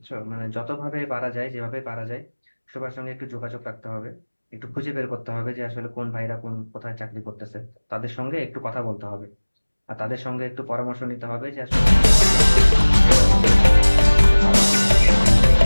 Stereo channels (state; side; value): inverted; both; correlation -1.00